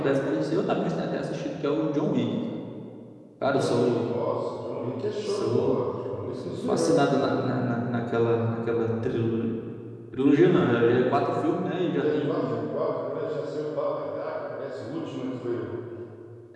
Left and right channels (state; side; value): identical; both; correlation 1.00